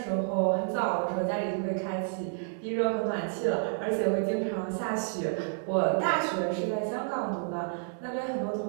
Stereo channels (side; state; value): left; silent; digital silence